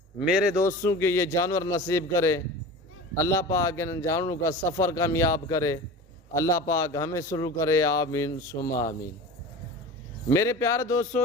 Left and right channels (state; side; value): normal; both; correlation 0.34